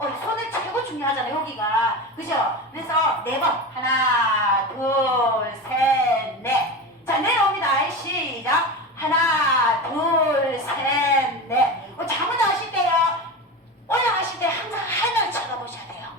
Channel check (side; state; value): both; normal; correlation 0.25